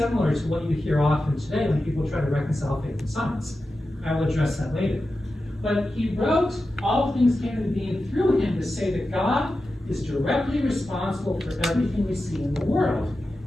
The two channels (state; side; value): normal; both; correlation 0.92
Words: to what you hear often today when people try to reconcile faith and science. I will address that later. But he wrote, all things came into being through him, to say that God is directly responsible for everything we see in the world.